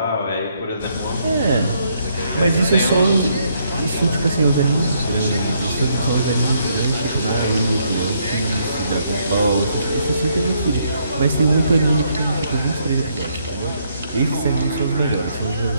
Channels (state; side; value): inverted; both; correlation -0.73